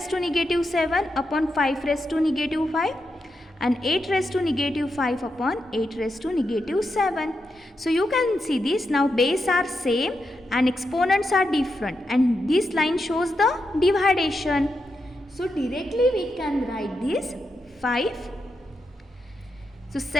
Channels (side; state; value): both; normal; correlation 0.86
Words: to negative 7 upon 5 raised to negative 5 and 8 raised to negative 5 upon 8 raised to negative 7. So you can see this, now base are same and exponents are different, and this line shows the dividation. So directly we can write this 5. So